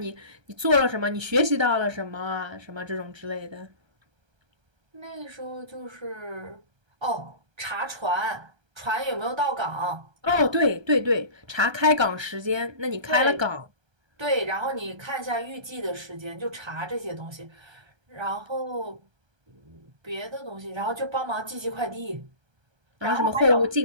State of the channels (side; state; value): left; late; 1.3 ms